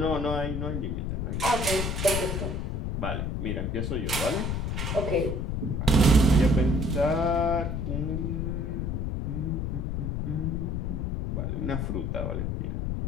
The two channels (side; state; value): left; noise; rumble, 1 dB below the sound